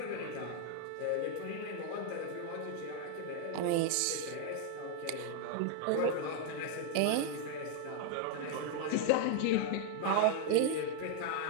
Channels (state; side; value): different; both; correlation 0.00